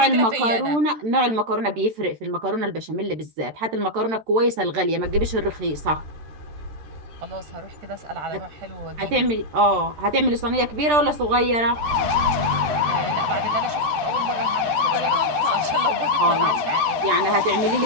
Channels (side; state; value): left; late; 13 ms